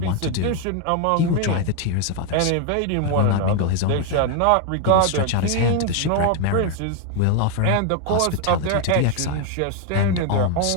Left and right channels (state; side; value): different; both; correlation 0.01